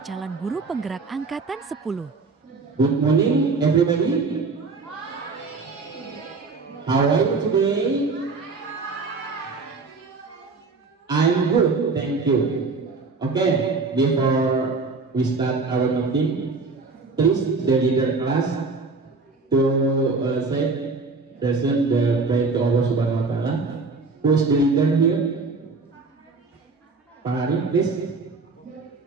calon guru penggerak angkatan 10. Good morning everybody. How are you today? I'm good, thank you. Okay, before we start our meeting, please the leader class to say present the prayer to Allah Subhanahu Wa Taala. Who's the leader here? Pak Hari, please.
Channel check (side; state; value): left; quieter; 4.1 dB